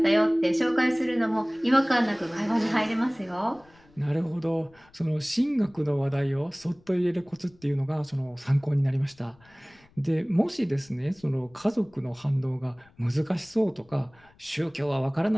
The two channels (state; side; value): noise; left; rumble, 29 dB below the sound